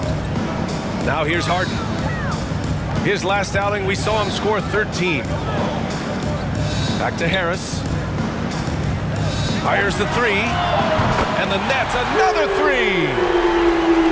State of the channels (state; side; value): identical; both; correlation 1.00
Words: Now here's Harden. His last outing, we saw him score 13. Back to Harris. Fires the 3. And the Nets, another 3.